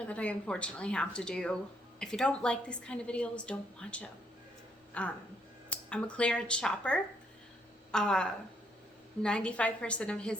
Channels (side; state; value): both; normal; correlation 0.72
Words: that I unfortunately have to do. If you don't like these kind of videos, don't watch them. I'm a clearance shopper. 95% of